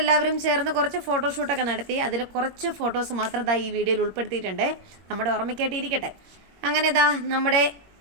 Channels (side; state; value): left; late; 21 ms